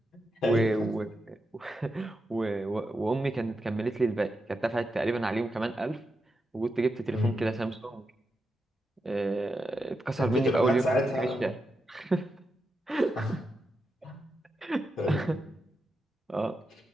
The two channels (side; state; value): both; normal; correlation 0.86